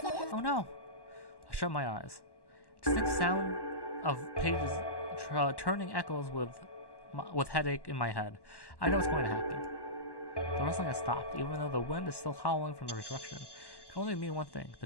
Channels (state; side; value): late; right; 1.1 ms